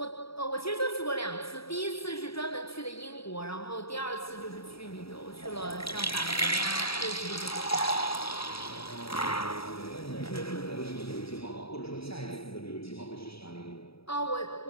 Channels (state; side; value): late; right; 0.77 ms